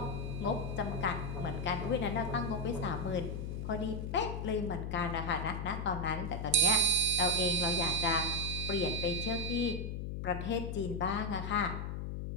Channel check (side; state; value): left; noise; hum, 4 dB below the sound